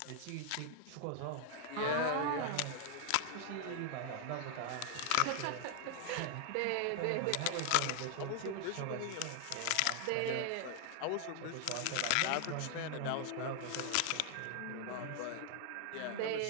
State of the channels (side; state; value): both; different; correlation 0.00